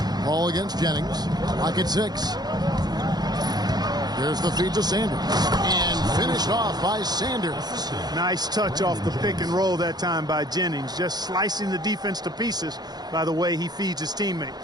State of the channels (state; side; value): late; left; 0.19 ms